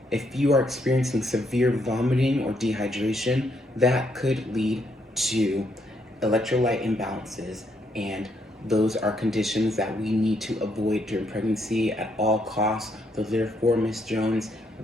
If you are experiencing severe vomiting or dehydration, that could lead to electrolyte imbalances, and those are conditions that we need to avoid during pregnancy at all costs. So therefore, Ms. Jones,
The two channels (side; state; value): both; normal; correlation 0.74